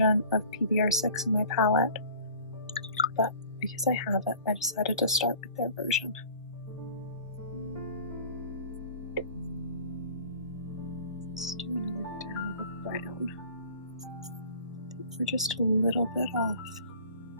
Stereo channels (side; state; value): both; inverted; correlation -0.45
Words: of PBR6 in my palette, but because I have it, I decided to start with their version. Let's do another dab of brown. I think we're just a little bit off.